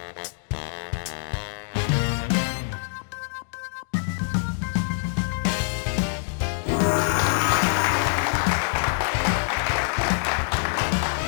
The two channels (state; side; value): silent; right; digital silence